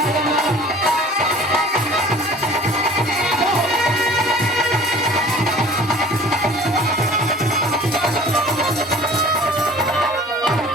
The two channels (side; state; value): both; normal; correlation 0.47